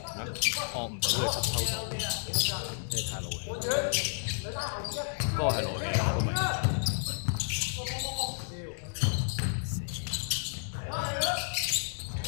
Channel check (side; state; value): right; silent; digital silence